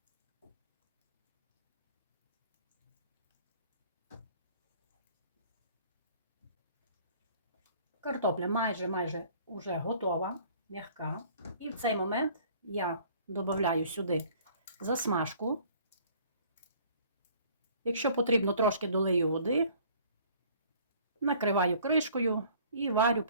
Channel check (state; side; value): inverted; both; correlation -0.54